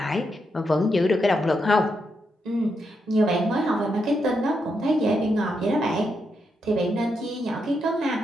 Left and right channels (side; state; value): both; normal; correlation 0.82